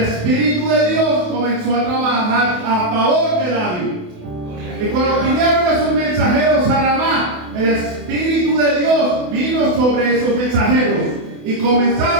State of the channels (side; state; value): left; late; 28 ms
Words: de Dios comenzó a trabajar a favor de David. Y cuando vinieron esos mensajeros a Ramá, el Espíritu de Dios vino sobre esos mensajeros y